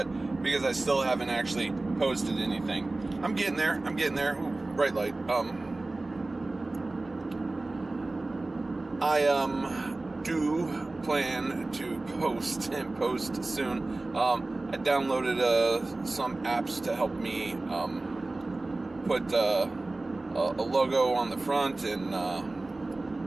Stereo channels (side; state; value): left; quieter; 3.0 dB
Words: because I still haven't actually posted anything. I'm getting there. Ooh, bright light. I do plan to post soon. I downloaded some apps to help me put a logo on the front and